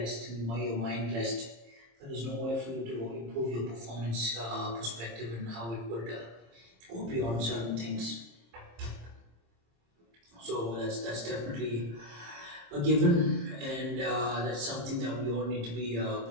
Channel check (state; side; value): late; left; 26 ms